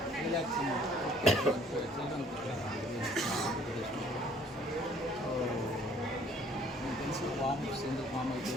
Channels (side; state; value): both; normal; correlation 0.58